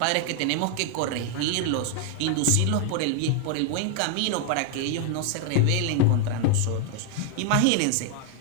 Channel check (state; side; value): different; both; correlation 0.00